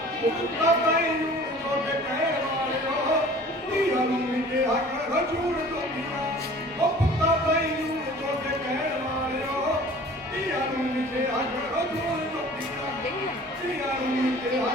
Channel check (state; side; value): normal; both; correlation 0.46